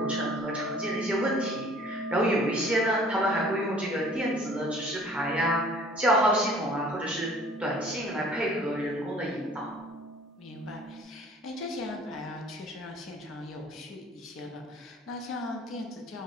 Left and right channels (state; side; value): normal; both; correlation 0.52